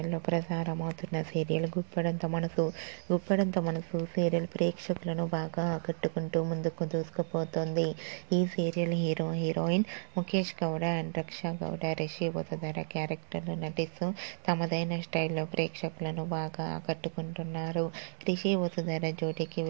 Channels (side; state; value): left; silent; 56 dB below the other